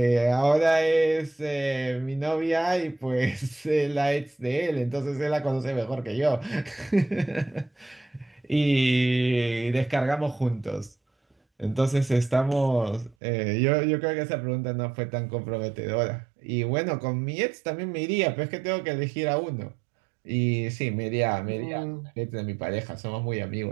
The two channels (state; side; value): drops out; left; at 13.2 s